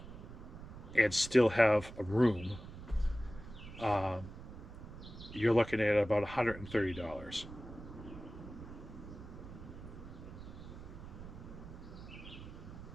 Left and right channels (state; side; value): noise; right; rumble, 13 dB below the sound